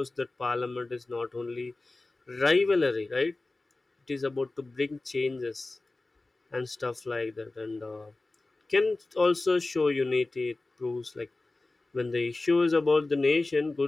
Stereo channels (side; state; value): right; quieter; 3.1 dB